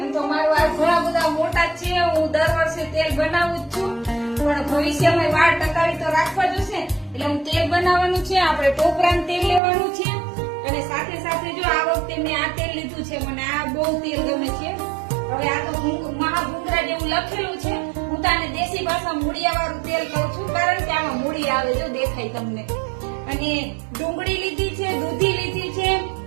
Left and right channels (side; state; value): left; drops out; at 9.6 s